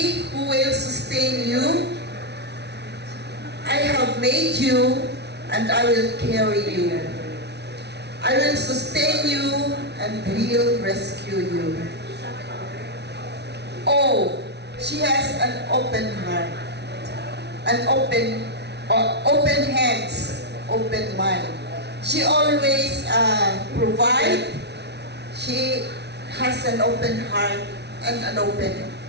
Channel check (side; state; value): left; late; 0.49 ms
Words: who will sustain you. I have made you, and I will carry you. I will sustain you and will rescue you. Oh, she has an open heart, an open hands, open mind. She always provides. She has an open heart and an open